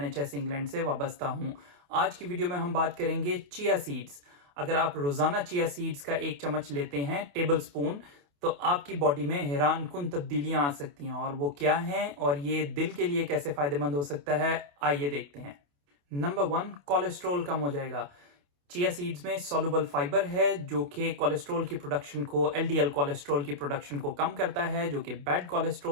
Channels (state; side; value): late; left; 28 ms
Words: इंग्लैंड से वाबस्ता हूं। आज की वीडियो में हम बात करेंगे चिया सीड्स। अगर आप रोजाना चिया सीड्स का 1 चम्मच लेते हैं टेबल स्पून, तो आपकी बॉडी में हैरान कुन तब्दीलियां आ सकती हैं। और वो क्या हैं और ये दिल के लिए कैसे फायदेमंद हो सकता है, आइए देखते हैं। नंबर 1, कोलेस्ट्रॉल कम हो जाएगा। चिया सीड्स में सॉल्युबल फाइबर है जो कि कोलेस्ट्रॉल की प्रोडक्शन को, एलडीएल कोलेस्ट्रॉल की प्रोडक्शन को कम करता है, जो कि बैड